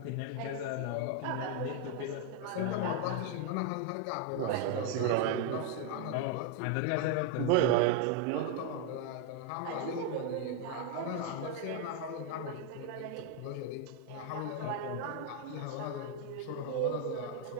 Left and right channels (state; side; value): different; both; correlation 0.01